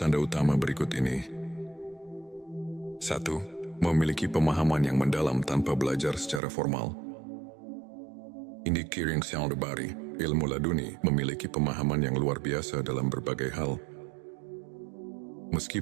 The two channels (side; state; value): left; drops out; at 6.4 s